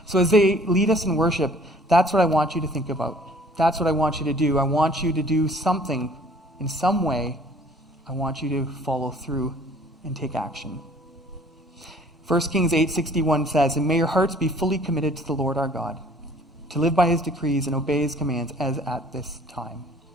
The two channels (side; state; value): both; normal; correlation 0.54